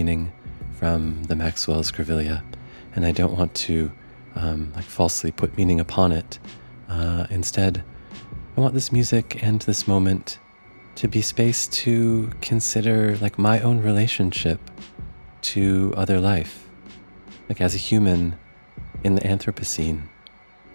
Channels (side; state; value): both; inverted; correlation -1.00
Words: from the Maxwell's Grevillea, and I don't want to falsely put meaning upon it. Instead, I want this music and this moment to be space to consider my own relationship to other life, as a human in the Anthropocene,